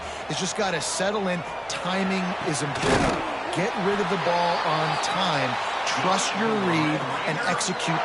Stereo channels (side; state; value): both; identical; correlation 1.00